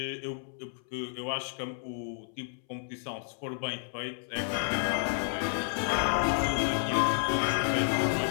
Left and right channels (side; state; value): right; silent; 57 dB below the other